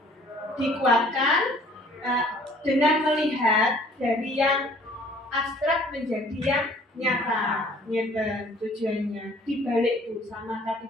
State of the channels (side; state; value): both; normal; correlation 0.55